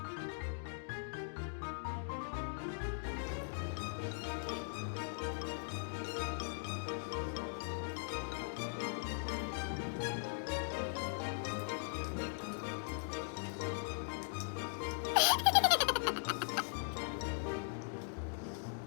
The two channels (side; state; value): right; silent; digital silence